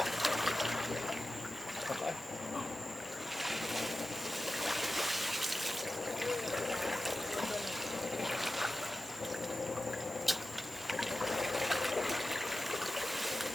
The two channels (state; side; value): normal; both; correlation 0.94